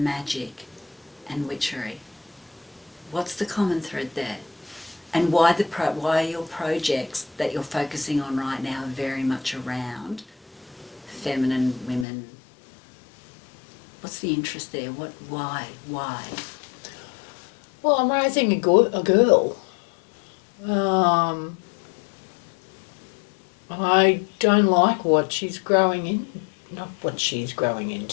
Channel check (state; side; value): drops out; right; at 12.1 s